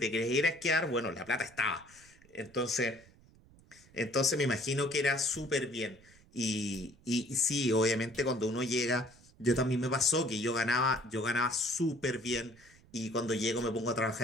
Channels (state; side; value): noise; right; rumble, 26 dB below the sound